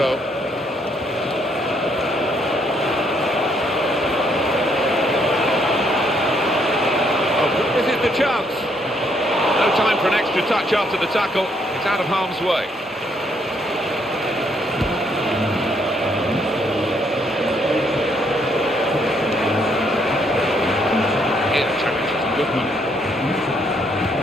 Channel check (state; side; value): normal; both; correlation 0.71